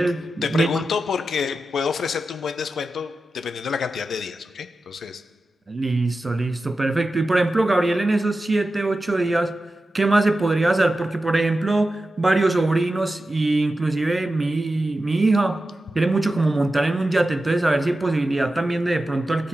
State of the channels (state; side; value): normal; both; correlation 0.92